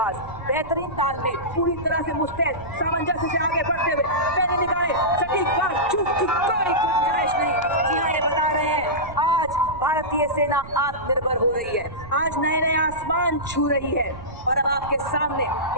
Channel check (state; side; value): noise; right; rumble, 15 dB below the sound